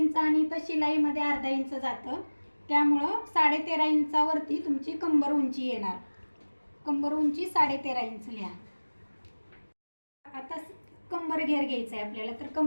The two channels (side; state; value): both; inverted; correlation -1.00